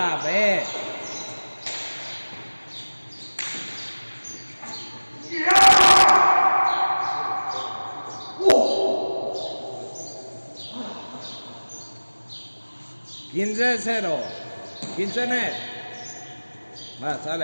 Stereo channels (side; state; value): both; inverted; correlation -1.00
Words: ve. $15-0. 15 net. Va,